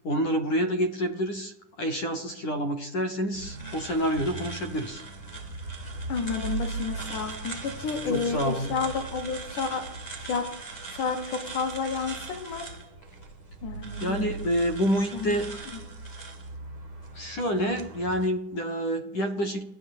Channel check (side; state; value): right; late; 10 ms